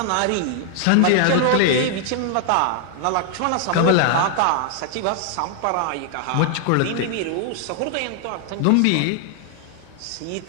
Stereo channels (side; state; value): both; different; correlation 0.00